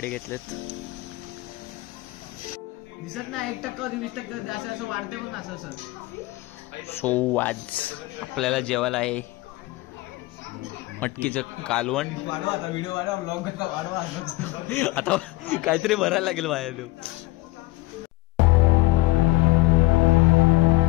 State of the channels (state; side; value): quieter; right; 20.0 dB